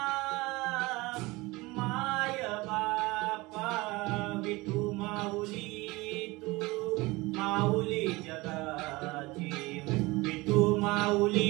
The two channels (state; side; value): quieter; left; 22.1 dB